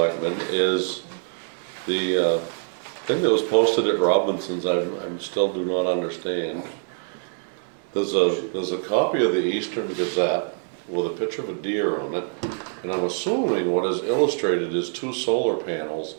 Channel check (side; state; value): left; silent; digital silence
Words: is the thing that was posted at Robinson's, I'm still do not understand. There's a copy of the Eastern Gazette with a picture of a deer on it, and I'm assuming what is illustrated is 2 solar panels,